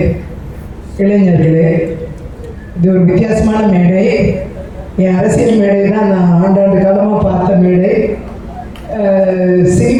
இளைஞர்களே, இது ஒரு வித்தியாசமான மேடை. என் அரசியல் மேடை தான் நான் ஆண்டாண்டு காலமாக பார்த்த மேடை.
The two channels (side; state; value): both; identical; correlation 1.00